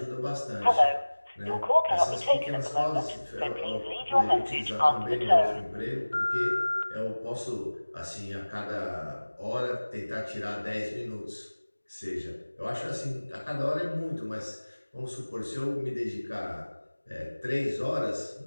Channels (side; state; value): both; inverted; correlation -1.00